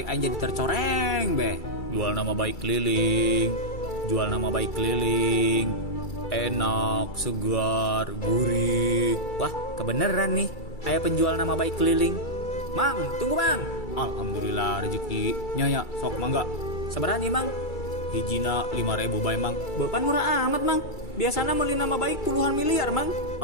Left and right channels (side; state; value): right; late; 2.3 ms